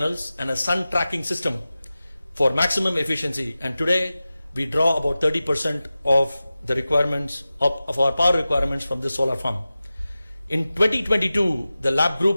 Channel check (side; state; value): both; inverted; correlation -0.95